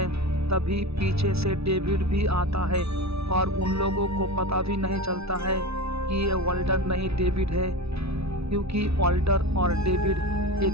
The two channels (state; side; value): late; left; 0.79 ms